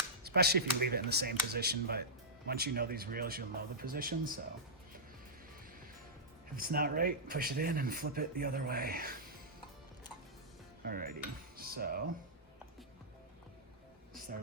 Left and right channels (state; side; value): normal; both; correlation -0.13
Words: especially if you leave it in the same position, but once you know these reels, you'll know the position, so if it's not right, push it in and flip it the other way. Alrighty, so